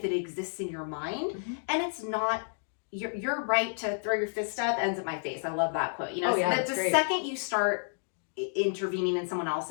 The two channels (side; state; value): right; silent; digital silence